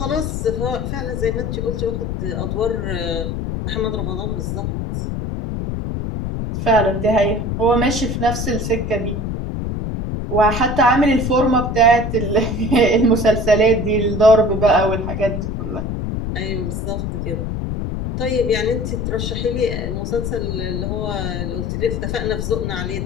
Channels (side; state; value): left; noise; rumble, 3 dB below the sound